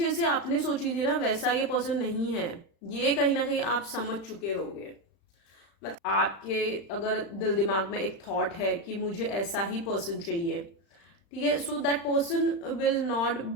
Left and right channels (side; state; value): right; late; 35 ms